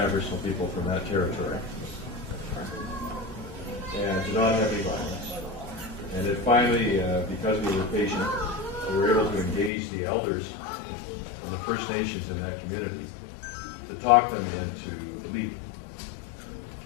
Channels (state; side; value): drops out; right; at 9.7 s